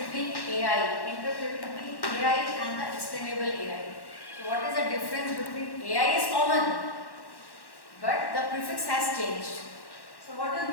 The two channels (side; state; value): right; late; 1.1 ms